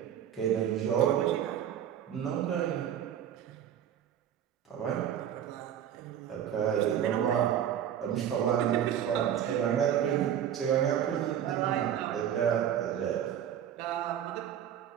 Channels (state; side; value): quieter; left; 9.9 dB